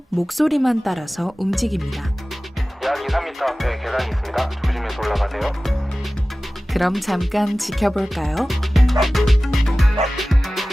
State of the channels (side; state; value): both; normal; correlation 0.97